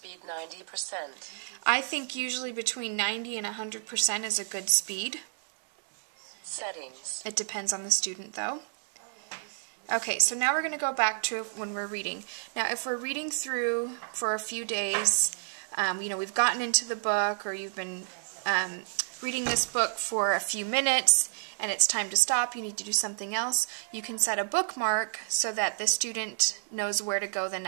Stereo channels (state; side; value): silent; left; 58 dB below the other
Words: 90%. I think usually between 90 and 100% is a good speed. Settings. It depends on the student though. Okay, so now we're going to go back to when we're reading. Now if we're reading through for a few days, we've gotten into the book, or you've been reading this book for a few minutes and it's time to stop, you need to do something else, you can set a bookmark so that the student knows where to go the